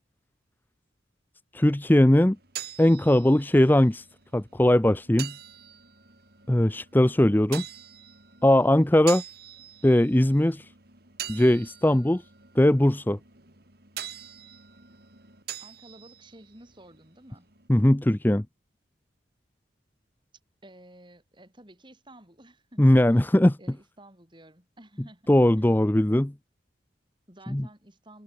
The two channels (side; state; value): both; normal; correlation 0.95